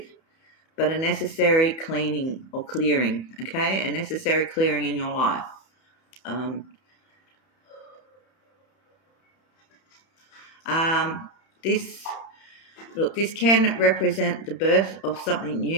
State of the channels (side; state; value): right; late; 31 ms